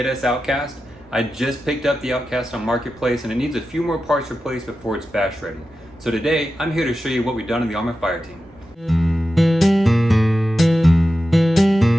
Outcast. I just picked up the Outcast on Marketplace and it needs a few more parts replaced before it's bash ready. So today, I'm here to show you what we've done in the Arrma FireTeam.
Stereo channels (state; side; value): normal; both; correlation 0.92